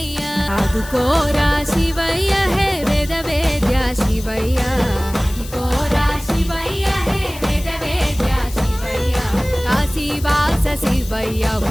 ఆదుకోరా శివయ్య హే వేద వేద్య శివయ్య ఆదుకోరా శివయ్య హే వేద వేద్య శివయ్య కాశీవాస శివయ్య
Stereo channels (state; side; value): noise; left; hiss, 15 dB below the sound